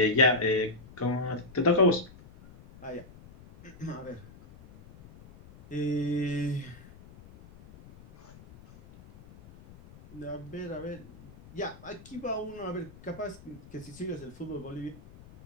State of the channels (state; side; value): noise; left; rumble, 20 dB below the sound